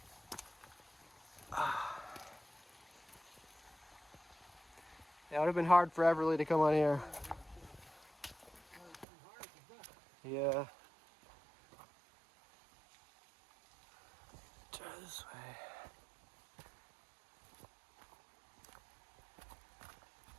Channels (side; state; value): left; drops out; at 9.1 s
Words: It would have been hard for Everly to come on here. Yeah. Try this way.